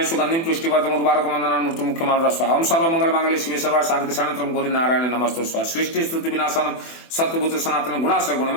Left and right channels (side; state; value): right; late; 24 ms